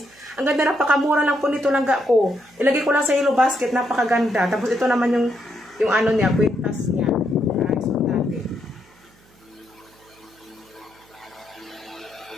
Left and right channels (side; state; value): right; noise; hum, 30 dB below the sound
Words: Ang ganda, napakamura lang po nito lang ko. Ilagay ko lang sa yellow basket. Napakaganda. Tapos, ito naman yung ano niya, kwintas niya. Ayan. So, natin.